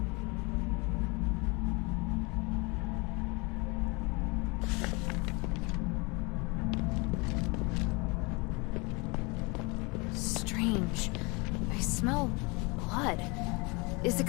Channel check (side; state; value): right; quieter; 28.0 dB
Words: Strange. I smell blood. Is it